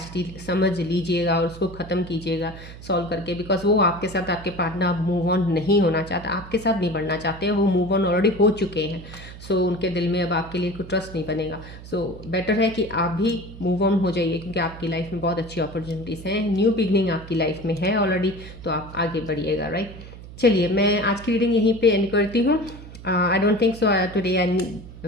ही समझ लीजिएगा और उसको ख़त्म कीजिएगा सॉल्व करके, बिकॉज वो आपके साथ, आपके पार्टनर अब मूव ऑन नहीं होना चाहता, आपके साथ नहीं बढ़ना चाहते हैं, वो मूव ऑन ऑलरेडी हो चुके हैं। सो उनके दिल में अब आपके लिए कोई ट्रस्ट नहीं बनेगा। सो बेटर है कि आप भी मूव ऑन हो जाइए, क्योंकि आपकी लाइफ में बहुत अच्छी अपॉर्चुनिटीज़ हैं, न्यू बिगनिंग आपकी लाइफ में है ऑलरेडी, तो आप आगे बढ़िएगा, राइट। चलिए, मैं आज की रीडिंग यहीं पे एंड करती हूँ। I don't think so today I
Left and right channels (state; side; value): noise; right; hum, 15 dB below the sound